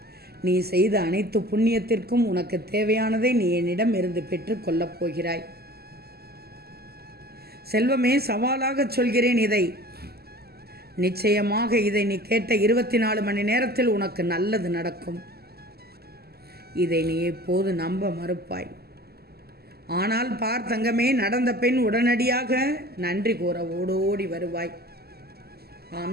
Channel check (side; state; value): left; late; 0.46 ms